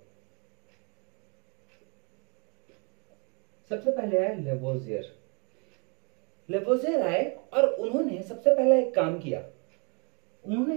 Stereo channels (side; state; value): left; quieter; 35.4 dB